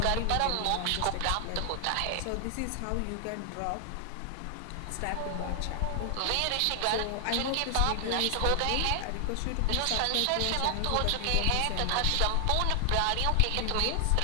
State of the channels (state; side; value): different; both; correlation 0.00